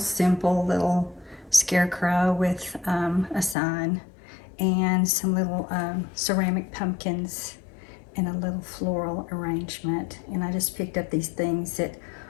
little scarecrow with a sign and some little ceramic pumpkins and a little floral arrangement. And I just picked up these things at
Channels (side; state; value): right; drops out; at 3.6 s